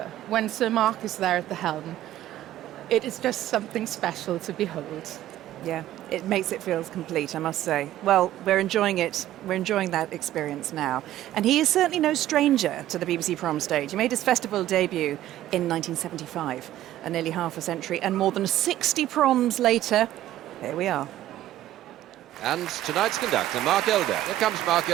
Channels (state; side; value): quieter; left; 13.5 dB